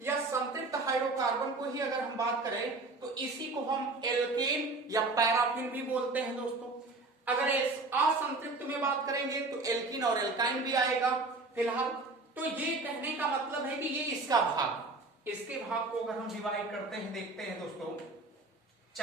या संतृप्त हाइड्रोकार्बन को ही अगर हम बात करें तो इसी को हम एल्केन या पैराफिन भी बोलते हैं दोस्तों। अगर इस असंतृप्त में बात करेंगे तो एल्कीन और एल्काइन भी आएगा फिलहाल। तो ये कहने का मतलब है कि ये इसका भाग, इसके भाग को अगर हम डिवाइड करते हैं, देखते हैं दोस्तों,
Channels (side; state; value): left; quieter; 3.4 dB